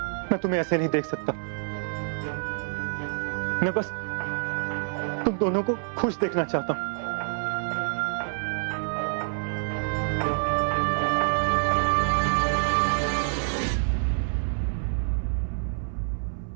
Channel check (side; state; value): left; silent; 60 dB below the other